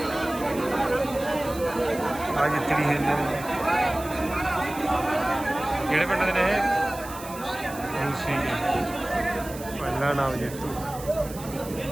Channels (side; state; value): right; noise; hiss, 15 dB below the sound